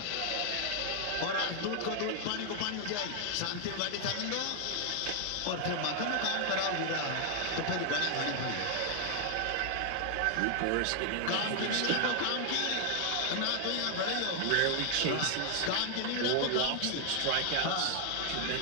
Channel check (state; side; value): different; both; correlation 0.00